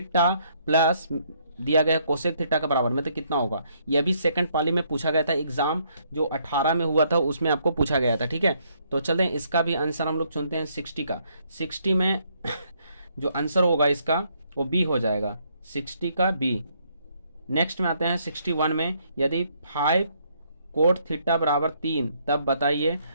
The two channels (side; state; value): both; inverted; correlation -0.70